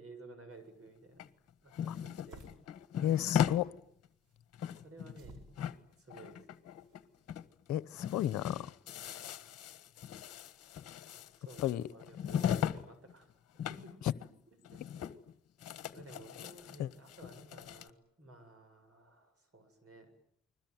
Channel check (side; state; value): right; quieter; 9.8 dB